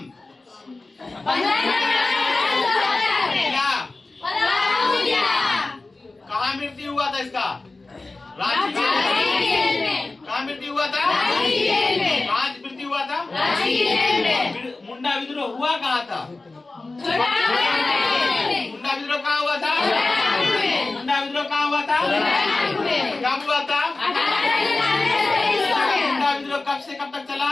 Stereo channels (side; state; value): right; quieter; 3.3 dB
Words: कहाँ मृत्यु हुआ था इसका? रांची जेल में। कहाँ मृत्यु हुआ था? कहाँ मृत्यु हुआ था? मुंडा विद्रोह हुआ कहाँ था? मुंडा विद्रोह कहाँ हुआ था? मुंडा विद्रोह कहाँ हुआ था? कब हुआ था? मुंडा विद्रोह कब से कब तक चला?